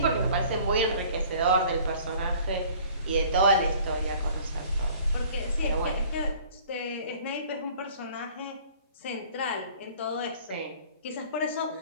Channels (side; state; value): both; inverted; correlation -0.51